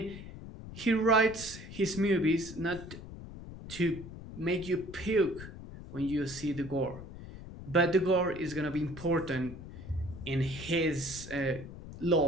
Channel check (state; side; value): noise; left; rumble, 13 dB below the sound